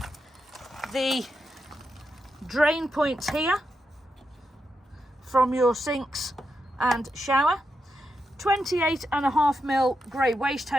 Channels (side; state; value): both; normal; correlation 0.85